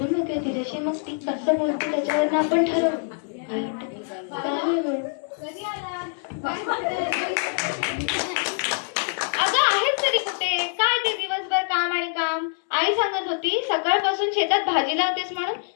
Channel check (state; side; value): silent; right; 62 dB below the other